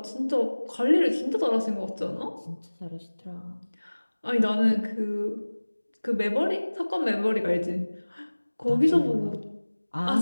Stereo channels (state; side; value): inverted; both; correlation -1.00